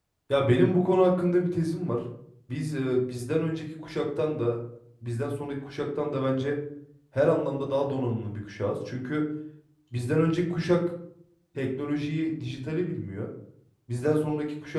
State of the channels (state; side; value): identical; both; correlation 1.00